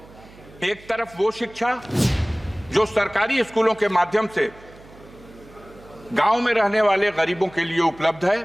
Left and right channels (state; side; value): noise; right; hum, 22 dB below the sound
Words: एक तरफ वो शिक्षा जो सरकारी स्कूलों के माध्यम से गांव में रहने वाले गरीबों के लिए उपलब्ध है,